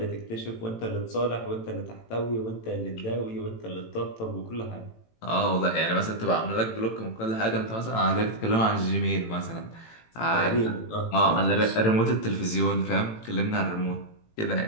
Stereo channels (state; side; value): late; right; 18 ms